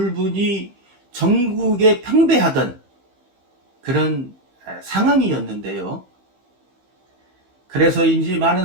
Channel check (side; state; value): left; late; 15 ms